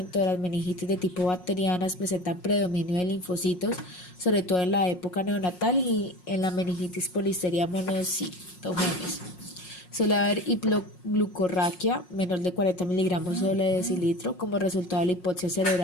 de las meningitis de tipo bacterianas presentan predominio de linfocitos, sobre todo en la época neonatal y en la meningitis polisteria monocitogenes. Suele haber hipoglucorraquia, menor de 40 miligramos sobre decilitro, como resultado de la hipoxia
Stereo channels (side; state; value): right; late; 5.5 ms